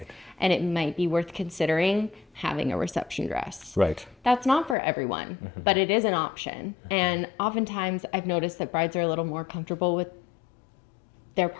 And it might be worth considering having a reception dress. Right. That's not for everyone, but it is an option. And oftentimes I've noticed that brides are a little more comfortable with their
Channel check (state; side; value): drops out; right; at 4.8 s